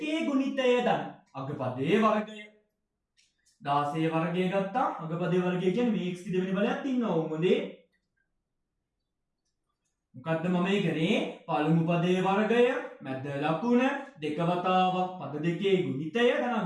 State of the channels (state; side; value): identical; both; correlation 1.00